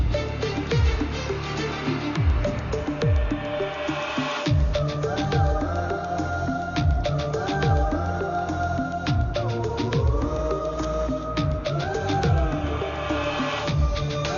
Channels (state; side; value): identical; both; correlation 1.00